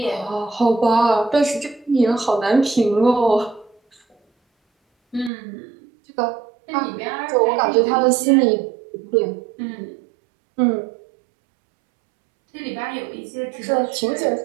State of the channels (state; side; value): drops out; left; at 5.3 s